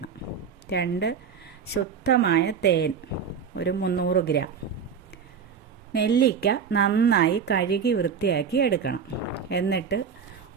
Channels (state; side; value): quieter; left; 6.7 dB